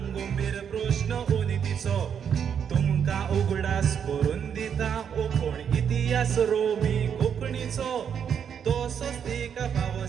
मेर प्रश्न उनितीचो तुमकां उगडास करून दिता कोण इतिहास रोमी कोंकणीचो तसोच तिका फावो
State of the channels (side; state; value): left; quieter; 7.8 dB